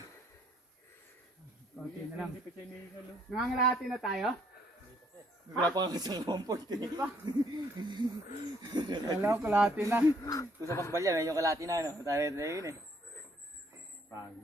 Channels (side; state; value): both; normal; correlation 0.66